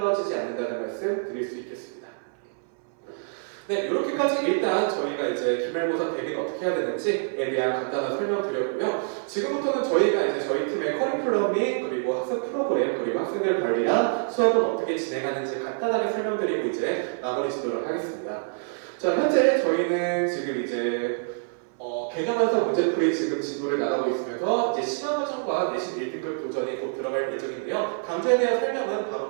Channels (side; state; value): left; silent; 61 dB below the other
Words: 않는다는 말씀 드릴 수 있겠습니다. 네, 이렇게까지 일단 저희가 이제 기말고사 대비는 어떻게 해야 되는지에 대한 간단한 설명 드렸고요. 지금부터는 저희가 이제 저희 팀의 커리큘럼이 그리고 학습 프로그램 그리고 학생들 관리랑 수업은 어떻게 진행하는지 간단하게 설명드리고 이제 마무리 짓도록 하겠습니다. 자, 현재 저희는 지금 이제 개념에서 문제풀이 지금 진도를 나가고 있으면서 이제 심화과정과 내신 1등급 도전이 곧 들어갈 예정인데요. 강좌에 대한 설명은